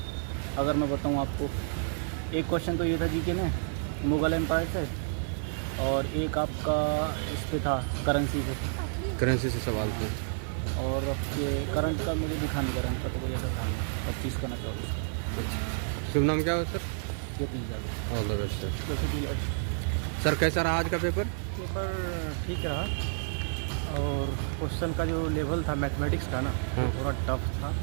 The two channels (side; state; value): left; silent; digital silence